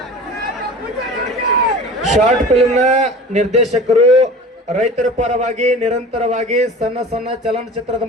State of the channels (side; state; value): both; normal; correlation 0.38